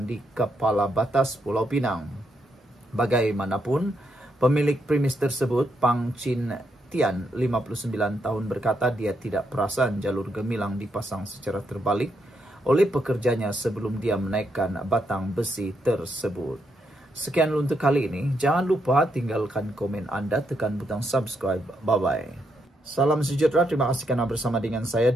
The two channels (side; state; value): both; normal; correlation 0.79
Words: di Kepala Batas Pulau Pinang. Bagaimanapun, pemilik premis tersebut, Pang Chin Tian, 59 tahun, berkata dia tidak perasan jalur gemilang dipasang secara terbalik oleh pekerjanya sebelum dia menaikkan batang besi tersebut. Sekian untuk kali ini. Jangan lupa tinggalkan komen Anda, tekan butang subscribe. Bye-bye. Salam sejahtera, terima kasih karena bersama dengan saya